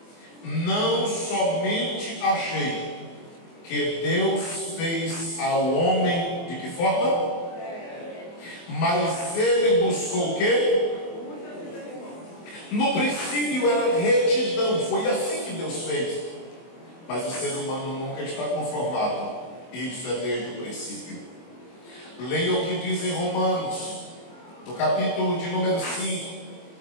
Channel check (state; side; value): late; right; 24 ms